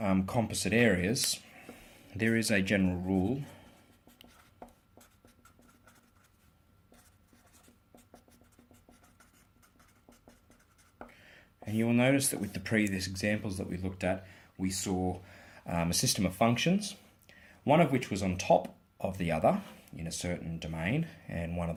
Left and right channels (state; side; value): identical; both; correlation 1.00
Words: composite areas, there is a general rule and you will notice that with the previous examples that we looked at, we saw a system of functions, one of which was on top of the other in a certain domain, and one of